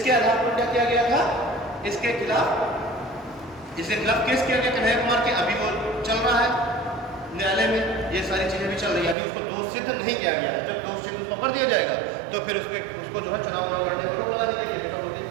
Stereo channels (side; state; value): left; drops out; at 9.2 s